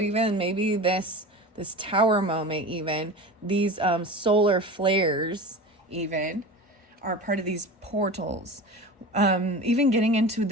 even maybe this this tower moment, even these solar flares even are part of these portals. Even getting into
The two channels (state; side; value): normal; both; correlation 0.32